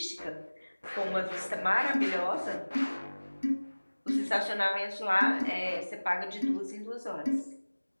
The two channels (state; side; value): inverted; both; correlation -1.00